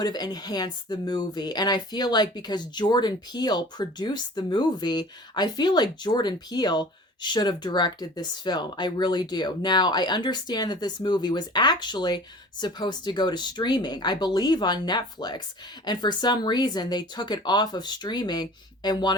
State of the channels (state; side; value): normal; both; correlation 0.43